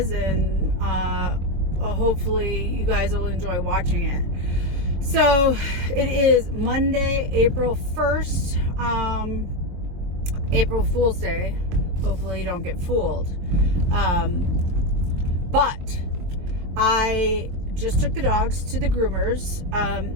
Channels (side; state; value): left; late; 23 ms